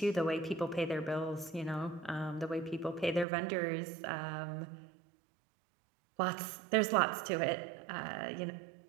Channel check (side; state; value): left; drops out; at 3.2 s